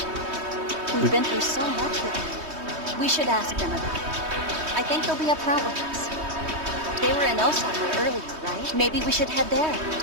We've been through so much with them. We should ask them about it. I think they'll be upfront with us. They were in Osaka earlier, right? Maybe we should head there.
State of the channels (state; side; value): late; left; 3.2 ms